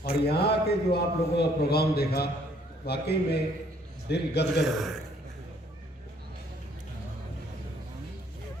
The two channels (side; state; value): both; normal; correlation 0.63